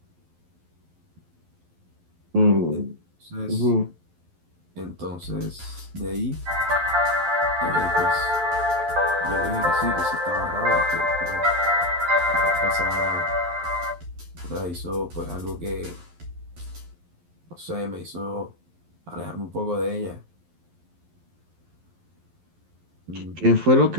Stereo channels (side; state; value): left; late; 11 ms